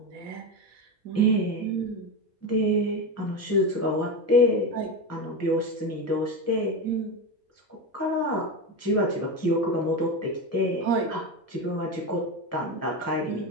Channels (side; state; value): both; normal; correlation 0.18